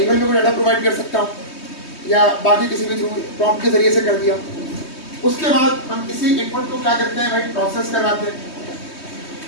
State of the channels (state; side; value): late; right; 3.2 ms